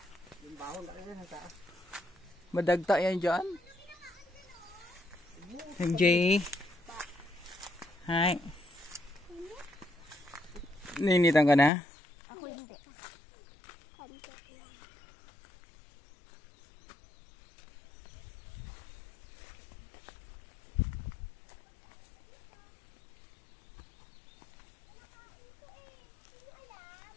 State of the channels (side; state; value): right; drops out; at 11.7 s